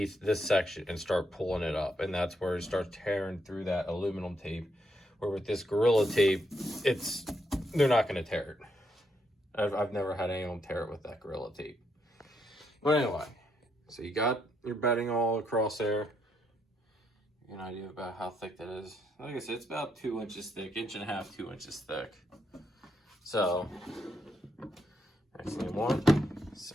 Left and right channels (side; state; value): both; normal; correlation 0.77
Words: this section and start pulling it up. And that's where it starts tearing through that aluminum tape. Where with this Gorilla Tape, they're not going to tear it. I've never had anyone tear it with that Gorilla Tape. But anyway, so you got your bedding all across there. An idea about how thick that is. Like I said, it's about 2 inches thick, 1.5 inches, 2 inches thick. So, next thing you want,